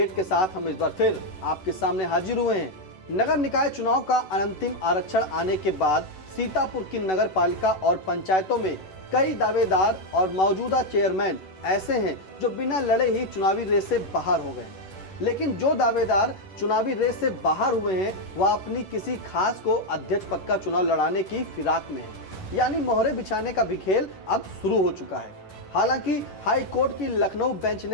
के साथ हम इस बार फिर आपके सामने हाजिर हुए हैं। नगर निकाय चुनाव का अंतिम आरक्षण आने के बाद सीतापुर की नगर पालिका और पंचायतों में कई दावेदार और मौजूदा चेयरमैन ऐसे हैं जो बिना लड़े ही चुनावी रेस से बाहर हो गए। लेकिन जो दावेदार चुनावी रेस से बाहर हुए हैं वह अपनी किसी खास को अध्यक्ष पद का चुनाव लड़ाने की फिराक में है, यानी मोहरे बिछाने का भी खेल अब शुरू हो चुका है। हालांकि हाई कोर्ट की लखनऊ बेंच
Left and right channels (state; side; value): late; right; 11 ms